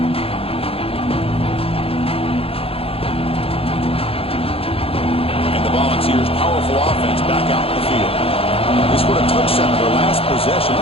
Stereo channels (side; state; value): right; late; 0.27 ms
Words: And the Volunteers' powerful offense back out in the field. They scored a touchdown in their last possession.